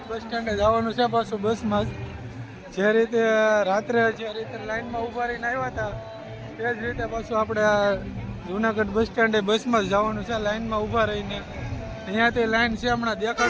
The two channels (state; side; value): identical; both; correlation 1.00